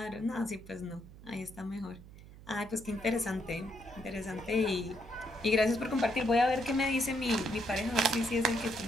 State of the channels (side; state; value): right; noise; hum, 18 dB below the sound